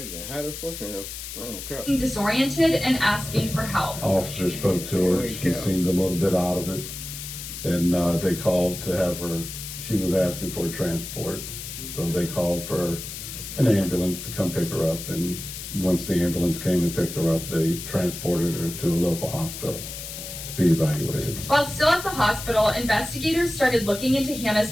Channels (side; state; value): left; noise; hiss, 9 dB below the sound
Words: again. How the fuck can you? looking disoriented and asking for help. Officer spoke to her. She seemed a little bit out of it, and they called to have her. She was asking for transport, so they called for an ambulance to come pick her up. And once the ambulance came and picked her up, they transported her to a local hospital to be evaluated. While still at the hospital, investigators started looking into Hannah's